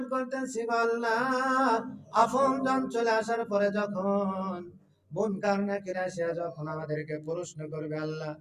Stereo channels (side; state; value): both; identical; correlation 1.00